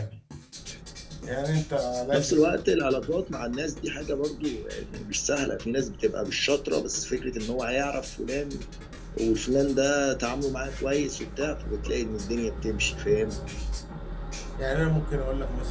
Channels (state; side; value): identical; both; correlation 1.00